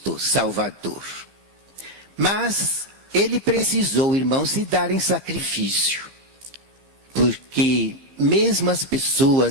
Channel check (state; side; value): late; left; 15 ms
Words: Salvador. Mas ele precisou, irmãos, se dar em sacrifício, porque mesmo as